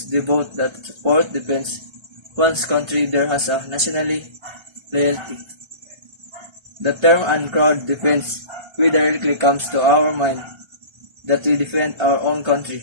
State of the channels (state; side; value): late; left; 1.3 ms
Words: devote, that support, defends one's country. There has a nationally loyalty. The term and crowd defense directly comes to our mind that we defend our own country.